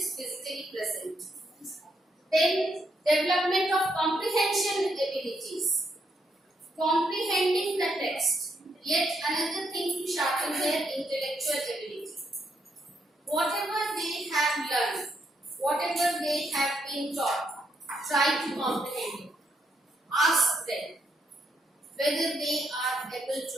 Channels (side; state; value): both; normal; correlation 0.77